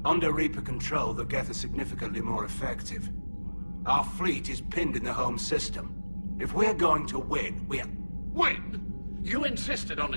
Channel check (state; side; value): inverted; both; correlation -1.00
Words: Under Reaper control, the Geth are significantly more effective. Our fleet is pinned in the home system. If we're going to win, Win? You insisted on